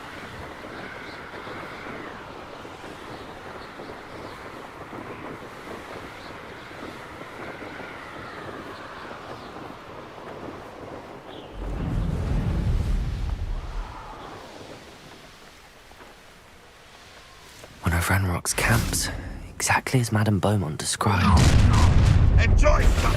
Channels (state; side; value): identical; both; correlation 1.00